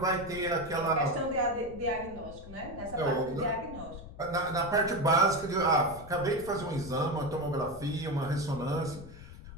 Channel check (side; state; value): left; noise; rumble, 15 dB below the sound